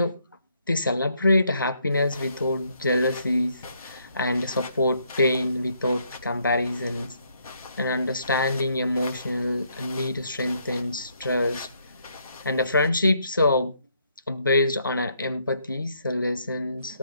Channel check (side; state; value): both; inverted; correlation -0.72